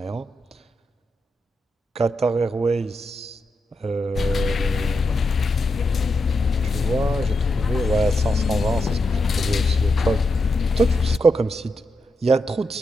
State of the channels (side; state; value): both; normal; correlation 0.85